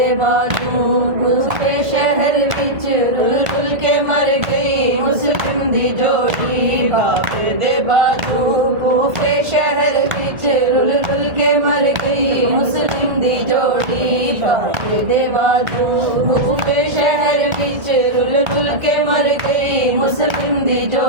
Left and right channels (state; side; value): late; left; 1.5 ms